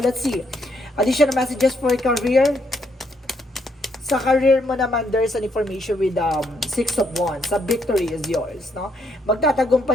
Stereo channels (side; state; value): both; normal; correlation 0.74